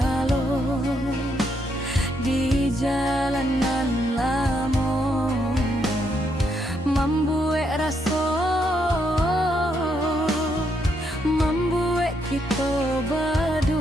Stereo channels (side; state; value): both; normal; correlation 0.76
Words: di jalanan lamo, membuat rasa, membuat kita